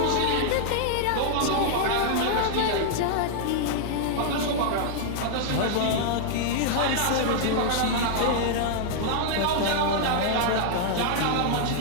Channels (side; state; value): both; different; correlation -0.01